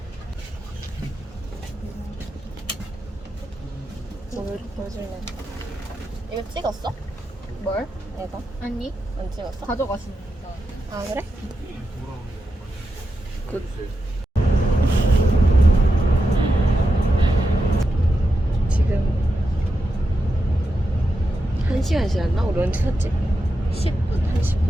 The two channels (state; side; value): normal; both; correlation 0.87